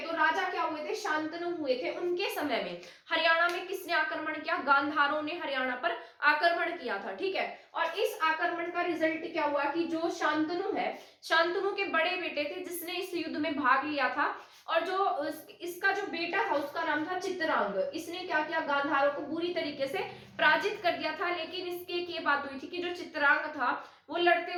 तो राजा क्या हुए थे? शांतनु हुए थे। उनके समय में हरियाणा में किसने आक्रमण किया? गांधारों ने हरियाणा पर आक्रमण किया था। ठीक है, और इस आक्रमण का रिजल्ट क्या हुआ कि जो शांतनु है, शांतनु के बड़े बेटे थे जिसने इस युद्ध में भाग लिया था, और जो इसका जो बेटा था उसका नाम था चित्रांग। इसने क्या किया? गांधारों को बुरी तरीके से पराजित कर दिया था। लेकिन इसके एक ये बात हुई थी कि जो चित्रांग था वो लड़ते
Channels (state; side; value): identical; both; correlation 1.00